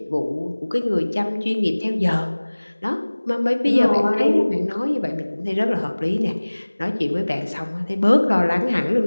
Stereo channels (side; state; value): both; inverted; correlation -1.00